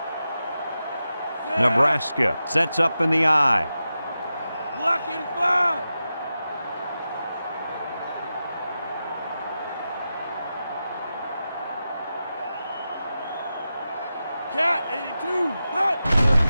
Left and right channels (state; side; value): inverted; both; correlation -0.91